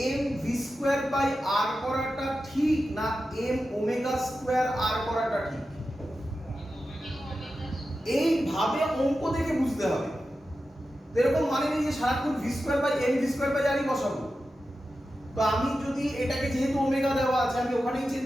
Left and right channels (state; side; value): normal; both; correlation 0.92